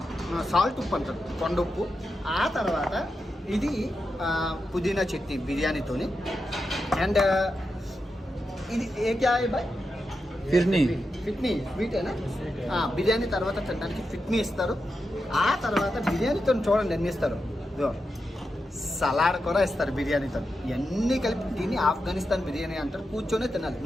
సాల్ట్ ఉప్పు అంటారు, కొండ ఉప్పు. ఆ తర్వాత ఇది పుదీనా చట్నీ బిర్యానీతోని. అండ్ ఇది ఏ క్యా బాయ్ ఫిట్నీ స్వీటేనా. బిర్యానీ తర్వాత తినడానికి ఫిట్నీ ఇస్తారు. ఆ తర్వాత బిర్యానీతో చూడండి ఎన్ని ఇస్తారు, సలాడ్ కూడా ఇస్తారు బిర్యానీతో. ఇవన్నీ కలిపి దీన్ని ఆఫ్ఘనిస్తాన్ బిర్యానీ అంటారు. కూర్చొనే తినాలి,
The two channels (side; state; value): both; normal; correlation 0.88